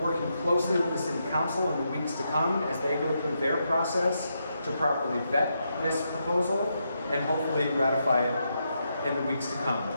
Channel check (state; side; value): inverted; both; correlation -0.82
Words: working closely with the City Council in the weeks to come as they go through their process to properly vet this proposal and hopefully ratify it in the weeks to come.